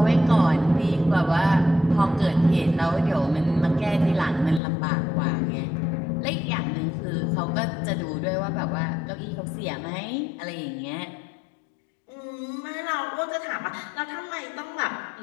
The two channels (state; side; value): drops out; right; at 4.6 s